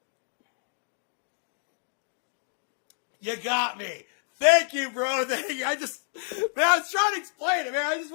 You got me. Thank you, bro. Thank you. I was trying to explain it, man. I just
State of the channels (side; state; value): right; silent; digital silence